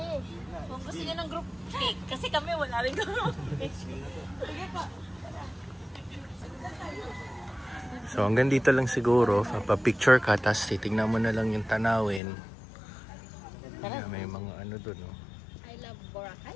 Kung gusto niyo ng group pic. Kasi kami wala rin group pic. Sige pa. So hanggang dito lang siguro, papapicture ka, tapos titignan mo na lang yung tanawin. Yeah, may mga ano doon. Oh. I love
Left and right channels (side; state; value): right; drops out; at 12.2 s